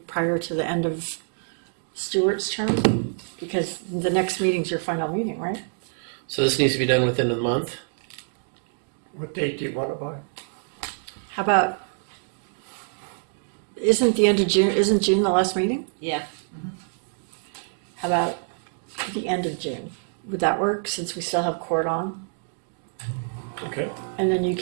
prior to the end of Stewart's term? Because the next meeting's your final meeting, right? So this needs to be done within a month? What date do you want it by? How about, isn't June the last meeting? Yeah. How about the end of June? Would that work, since we still have court on? Okay. And then you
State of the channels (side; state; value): left; silent; digital silence